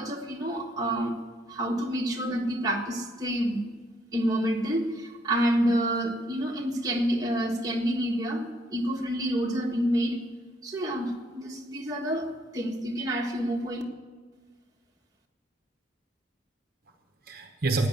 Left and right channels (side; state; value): both; normal; correlation 0.69